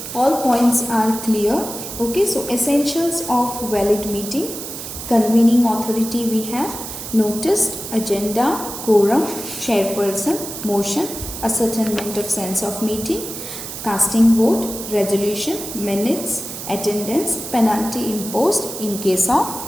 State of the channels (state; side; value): noise; right; hiss, 9 dB below the sound